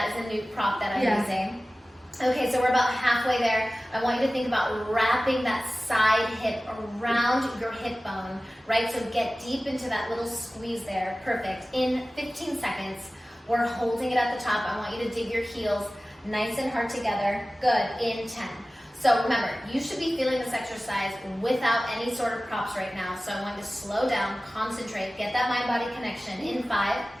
is a new prop that I'm using. Okay, so we're about halfway there. I want you to think about wrapping that side hip around your hip bone, right? So get deep into that little squeeze there. Perfect. In 15 seconds, we're holding it at the top. I want you to dig your heels nice and hard together. Good. In 10. So remember, you should be feeling this exercise without any sort of props right now. So I want you to slow down, concentrate, get that mind-body connection. In 5,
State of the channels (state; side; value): normal; both; correlation 0.97